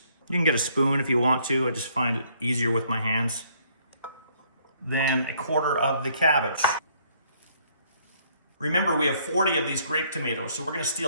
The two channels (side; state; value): both; inverted; correlation -0.65